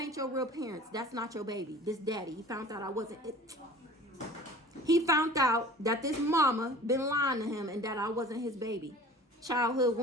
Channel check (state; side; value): normal; both; correlation 0.43